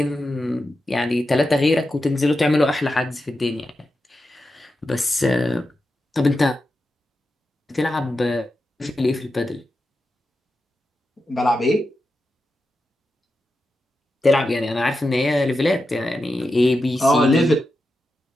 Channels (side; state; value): both; normal; correlation 0.89